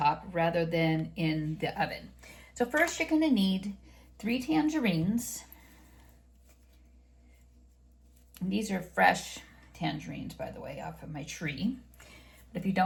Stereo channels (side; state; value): both; identical; correlation 1.00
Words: rather than in the oven. So first you're going to need 3 tangerines. And these are fresh tangerines, by the way, off of my tree. But if you